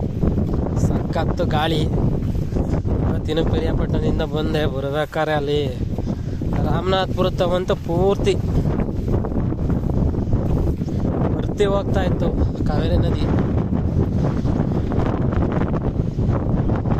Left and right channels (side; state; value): both; identical; correlation 1.00